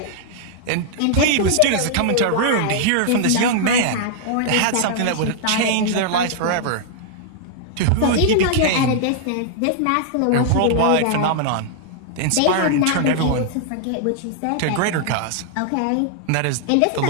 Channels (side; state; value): both; different; correlation -0.01